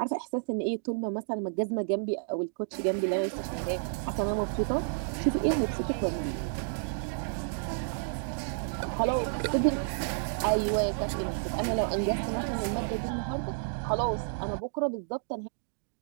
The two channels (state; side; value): silent; left; digital silence